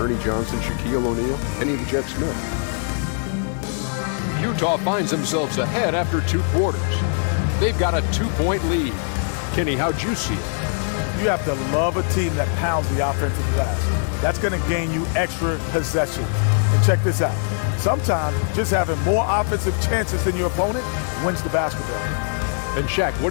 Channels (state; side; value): silent; right; 56 dB below the other